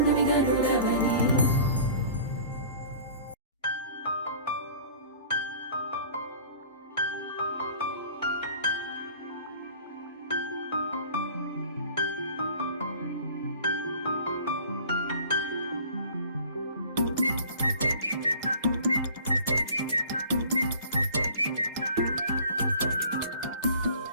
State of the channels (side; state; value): both; inverted; correlation -0.45